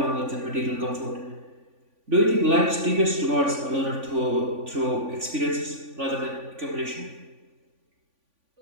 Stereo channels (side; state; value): left; late; 3.5 ms